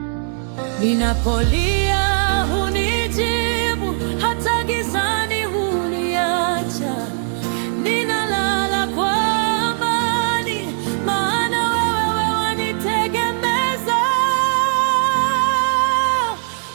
Ninapolia hunijibu, hata gizani huniacha. Ninalala kwa amani, maana wewe wanitegemeza.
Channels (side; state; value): left; silent; digital silence